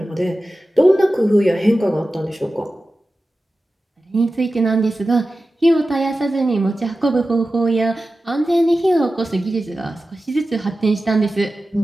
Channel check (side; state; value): both; normal; correlation 0.94